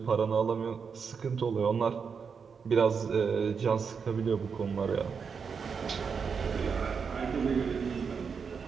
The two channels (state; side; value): quieter; left; 6.0 dB